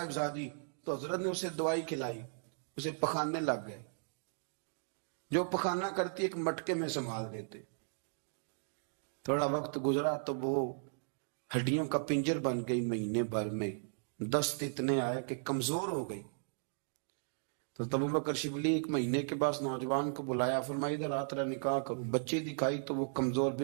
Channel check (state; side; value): silent; left; digital silence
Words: تو حضرت نے اسے دوائی کھلائی, اسے پخانے لگ گئے. جو پخانہ کرتی ایک مٹکے میں سنبھال دیتے. تھوڑا وقت گزرا تو وہ ہڈیوں کا پنجر بن گئی. مہینے بھر میں دست اتنے آئے کہ کمزور ہو گئی. تو ابوبکر شبلی 1 مہینے کے بعد نوجوان کو بلایا, فرمایا ادھر آ تیرا نکاح کروں. بچی دکھائی تو وہ کمزور